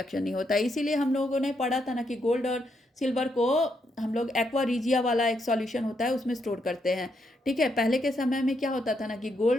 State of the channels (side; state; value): both; normal; correlation 0.78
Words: नहीं होता है। इसीलिए हम लोगों ने पढ़ा था ना कि गोल्ड और सिल्वर को हम लोग एक्वा रिजिया वाला एक सॉल्यूशन होता है उसमें स्टोर करते हैं, ठीक है। पहले के समय में क्या होता था ना कि